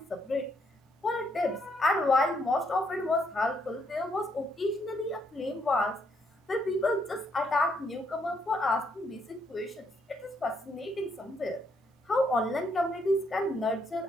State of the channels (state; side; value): normal; both; correlation 0.74